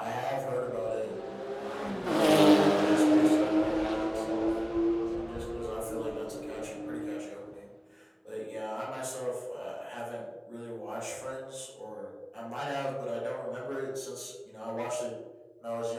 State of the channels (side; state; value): both; identical; correlation 1.00